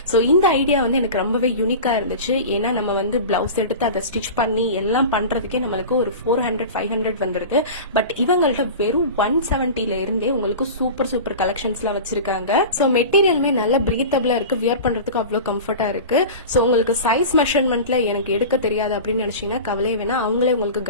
சோ இந்த ஐடியா வந்து எனக்கு ரொம்பவே யூனிக்கா இருந்துச்சு. ஏன்னா நம்ம வந்து பிளவுஸ் எடுத்து அதை ஸ்டிச் பண்ணி எல்லாம் பண்றதுக்கே நம்மளுக்கு ஒரு 400-500 வந்துருது. பட் இவங்கள்ட்ட வெறும் 170ல இருந்தே உங்களுக்கு சூப்பர் கலெக்ஷன்ஸ் எல்லாம் வச்சிருக்காங்க. சோ மெட்டீரியலுமே நல்ல பிரீத்தபிளா இருக்கு. வியர் பண்றதுக்கு அவ்வளவு கம்ஃபர்ட்டா இருக்கு. சோ உங்களுக்கு சைஸ் மெஷர்மெண்ட்ல எனக்கு எடுக்க தெரியாது அப்படின்னு நினைச்சீங்கன்னா கவலையே வேணா, அவங்களே உங்களுக்கு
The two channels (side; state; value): both; inverted; correlation -0.32